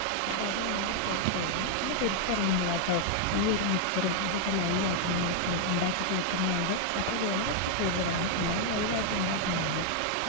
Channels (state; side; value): different; both; correlation 0.00